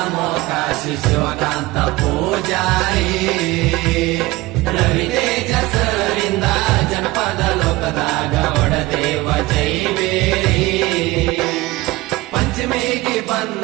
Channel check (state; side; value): quieter; left; 19.7 dB